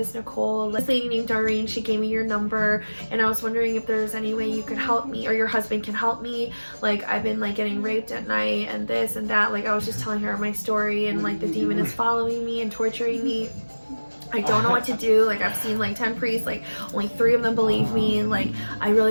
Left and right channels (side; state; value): both; inverted; correlation -1.00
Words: Nicole. This lady named Doreen, she gave me your number, and I was wondering if there's any way you could help me, or your husband can help me. Like, I've been like getting raped at night and this and that. Like, I was just telling her my story, and like the demon is following me and torturing me. I don't know what to do. Like, I've seen like 10 priests, like only 3 of them believe me, and like I